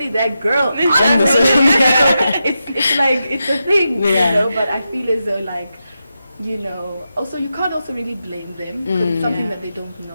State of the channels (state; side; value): inverted; both; correlation -0.88